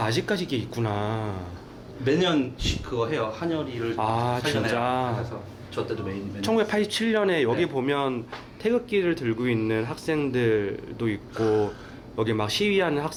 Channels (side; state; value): both; identical; correlation 1.00